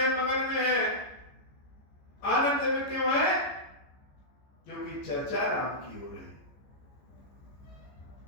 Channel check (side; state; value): right; late; 14 ms